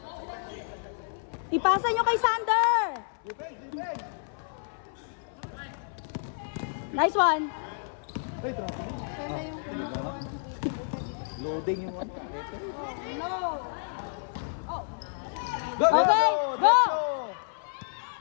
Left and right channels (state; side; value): silent; right; 58 dB below the other